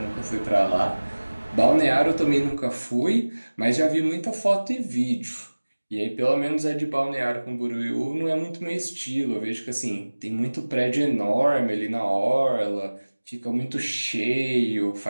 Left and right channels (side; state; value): both; inverted; correlation -1.00